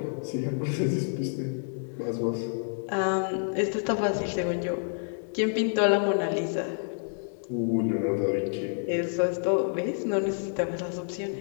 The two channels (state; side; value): silent; right; digital silence